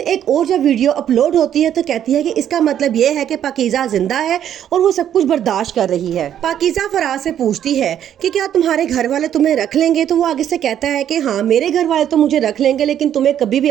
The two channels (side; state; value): left; quieter; 10.2 dB